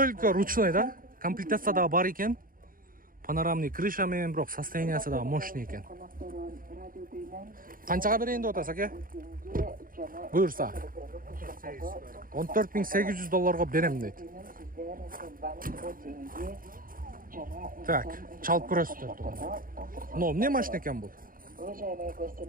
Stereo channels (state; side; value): late; left; 0.41 ms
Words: ручной, да? Комплектация да бар екен. Панорамный крыша мен, бирок состояниясы да мощный екен. Канчага берейин деп атасыз, аке? Буйрса. 14.800 долларга берем дейт. Так, чалып көрөсүздөр туганда. Но эмне машина экен бул?